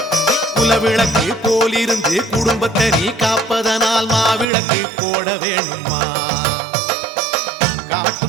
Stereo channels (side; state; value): left; drops out; at 4.5 s